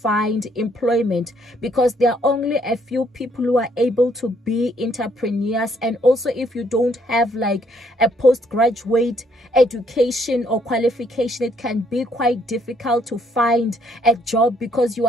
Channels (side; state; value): both; normal; correlation 0.68